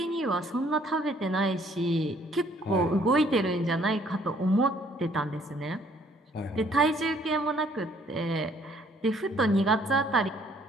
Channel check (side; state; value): both; normal; correlation 0.62